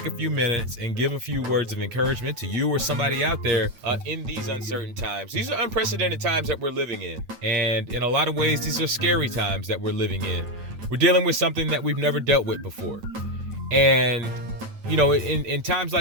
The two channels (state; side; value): late; left; 9.0 ms